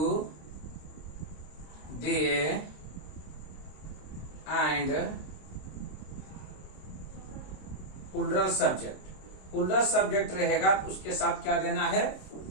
they and plural subject. Plural subject रहेगा तो उसके साथ क्या देना है?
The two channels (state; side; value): late; right; 26 ms